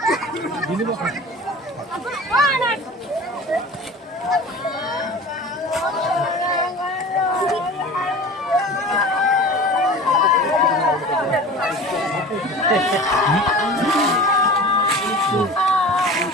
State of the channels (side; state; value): both; normal; correlation 0.37